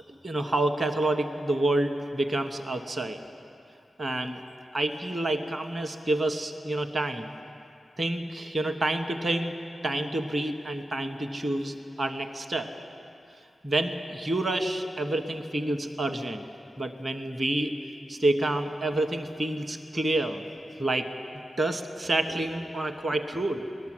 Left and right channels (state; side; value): normal; both; correlation 0.89